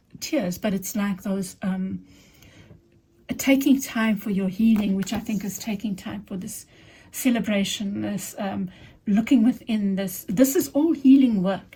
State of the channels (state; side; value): identical; both; correlation 1.00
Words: tears, but it's like those taking time for your healing, which I think is taking time for this celebration, this looking within this. This is all healing work,